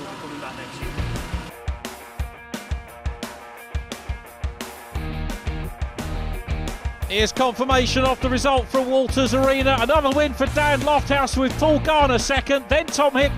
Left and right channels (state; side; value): identical; both; correlation 1.00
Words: be coming back next year. Here's confirmation of the result from Walters Arena. Another win for Dan Lofthouse with Paul Garner second, then Tom